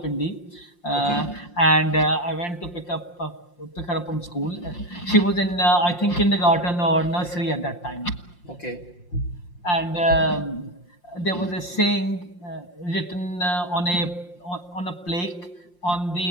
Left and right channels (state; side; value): late; right; 5.7 ms